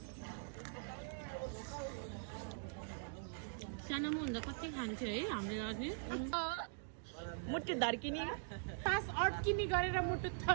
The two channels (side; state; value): left; silent; digital silence